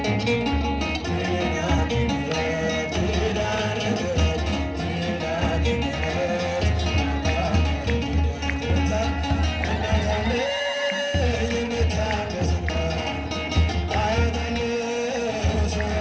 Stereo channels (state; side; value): identical; both; correlation 1.00